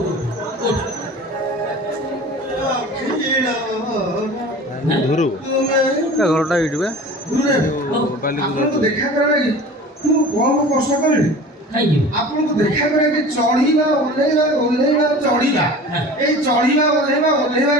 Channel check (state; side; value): normal; both; correlation 0.39